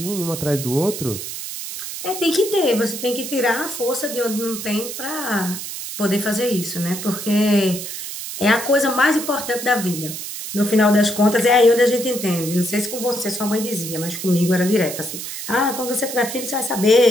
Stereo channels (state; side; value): noise; right; hiss, 8 dB below the sound